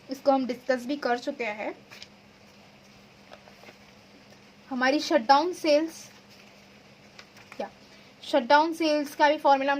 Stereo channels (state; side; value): identical; both; correlation 1.00